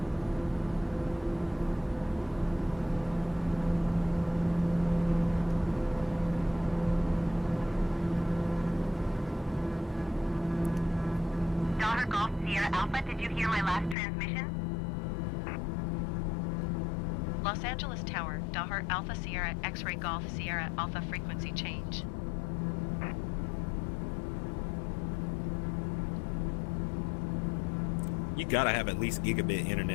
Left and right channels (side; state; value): right; drops out; at 14.0 s